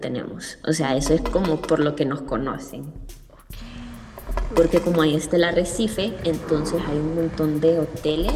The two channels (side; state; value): both; identical; correlation 1.00